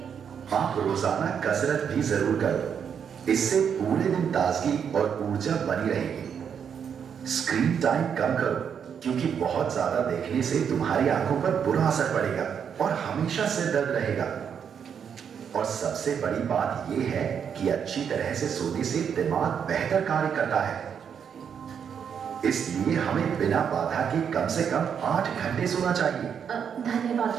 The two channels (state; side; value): quieter; left; 7.6 dB